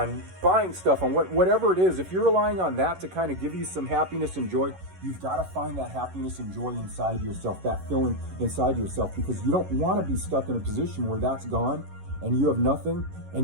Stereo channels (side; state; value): left; late; 11 ms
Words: buying stuff, on whatever it is, if you're relying on that to kind of give you some happiness and joy, you've got to find that happiness and joy inside yourself, that feeling inside yourself, because you don't want to be stuck in a position where that's gone and you have nothing